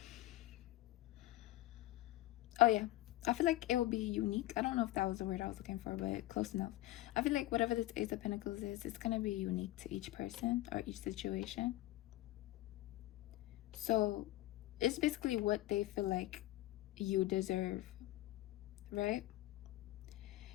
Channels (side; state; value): right; quieter; 16.7 dB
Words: Oh yeah. I feel like it will be unique. I don't know if that was the word I was looking for, but close enough. I feel like whatever this Ace of Pentacles is, it's gonna be unique to each person or each situation. So it's basically what they feel like you deserve, right?